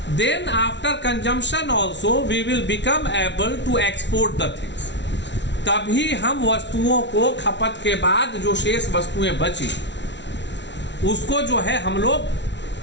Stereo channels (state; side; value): late; right; 0.51 ms